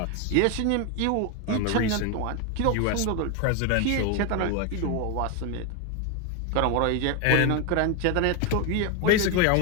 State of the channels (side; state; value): both; different; correlation 0.01